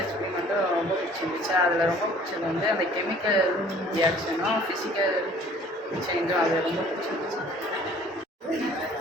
எக்ஸ்பெரிமெண்ட்டும் ரொம்ப பிடிச்சிருந்துச்சு. அதில் ரொம்ப பிடிச்சது வந்து அந்த கெமிக்கல் ரியாக்ஷனும் ஃபிசிக்கல் சேஞ்சும் அதில் ரொம்ப பிடிச்சிருந்துச்சு.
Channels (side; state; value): both; normal; correlation 0.52